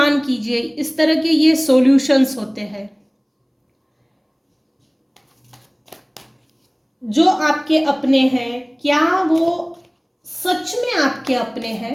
कीजिए, इस तरह के ये सॉल्यूशंस होते हैं। जो आपके अपने हैं क्या वो सच में आपके अपने हैं?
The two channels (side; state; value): both; identical; correlation 1.00